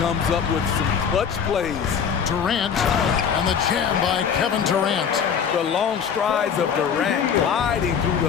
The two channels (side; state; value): right; quieter; 7.3 dB